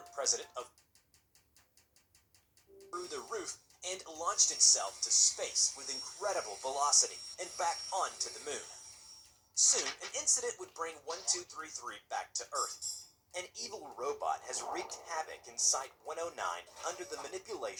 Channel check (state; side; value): identical; both; correlation 1.00